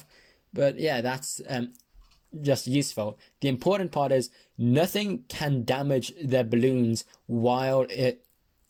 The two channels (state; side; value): identical; both; correlation 1.00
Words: But yeah, that's just useful. The important part is nothing can damage the balloons while it